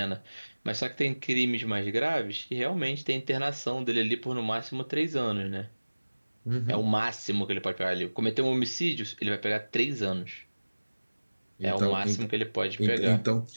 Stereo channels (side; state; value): both; inverted; correlation -1.00